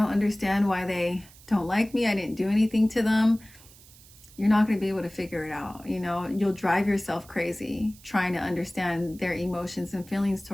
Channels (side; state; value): right; noise; hiss, 23 dB below the sound